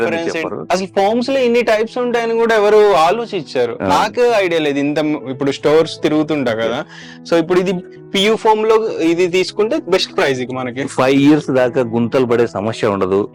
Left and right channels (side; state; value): both; identical; correlation 1.00